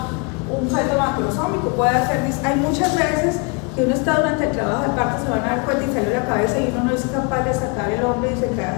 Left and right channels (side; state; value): right; quieter; 31.7 dB